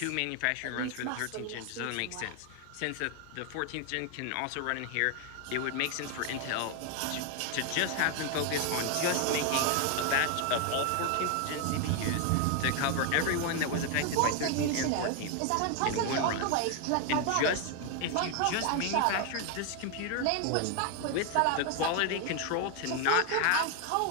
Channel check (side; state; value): both; different; correlation 0.01